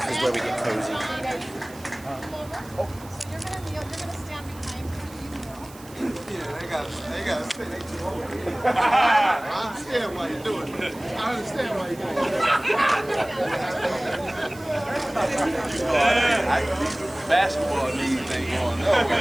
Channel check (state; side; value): noise; right; hiss, 21 dB below the sound